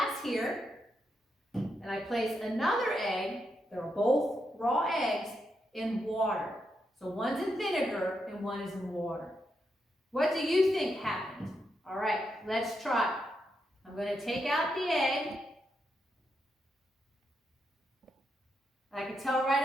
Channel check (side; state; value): both; normal; correlation 0.83